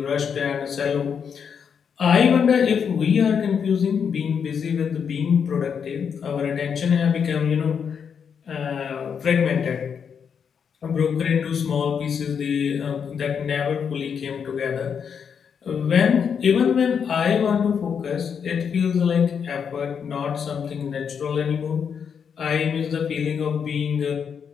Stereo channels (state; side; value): quieter; right; 7.0 dB